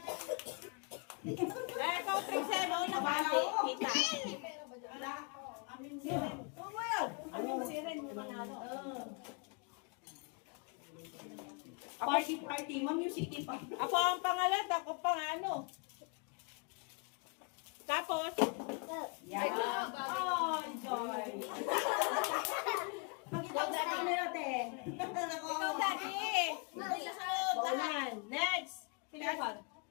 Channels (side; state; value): right; quieter; 34.9 dB